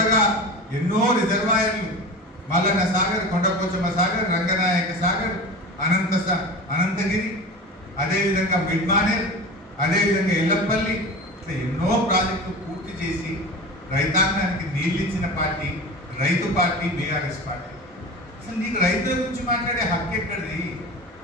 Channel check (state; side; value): normal; both; correlation 0.32